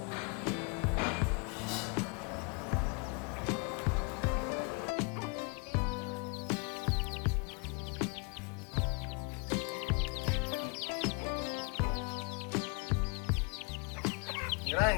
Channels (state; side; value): quieter; right; 32.8 dB